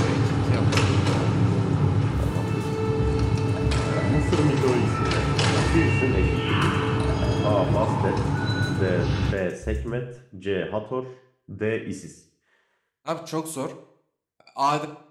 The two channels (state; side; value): identical; both; correlation 1.00